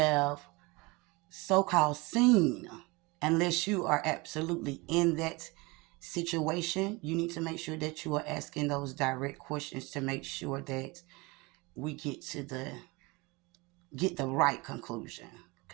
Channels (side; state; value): left; quieter; 25.3 dB